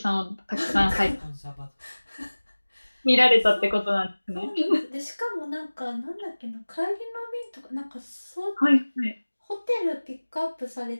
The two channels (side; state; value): both; inverted; correlation -1.00